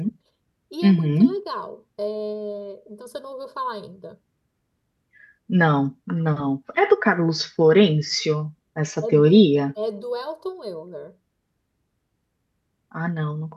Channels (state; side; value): identical; both; correlation 1.00